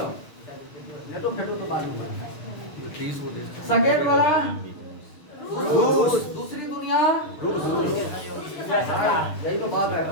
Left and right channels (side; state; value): right; late; 6.5 ms